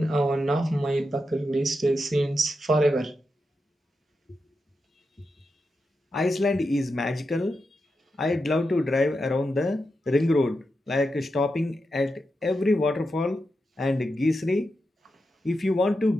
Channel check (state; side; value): normal; both; correlation 0.87